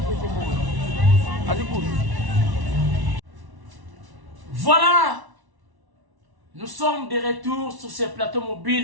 Voilà, nous sommes de retour sur ce plateau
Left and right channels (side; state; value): left; late; 1.1 ms